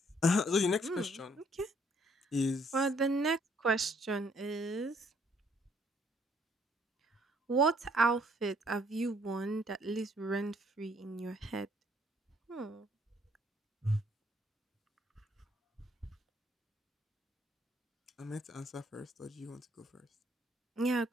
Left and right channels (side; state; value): both; normal; correlation 0.65